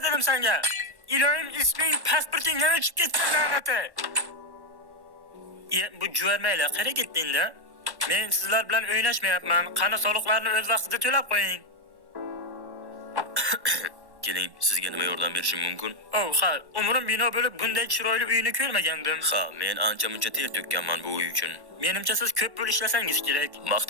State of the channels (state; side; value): late; left; 1.1 ms